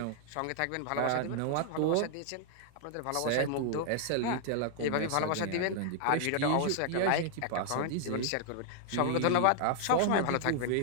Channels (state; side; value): different; both; correlation 0.00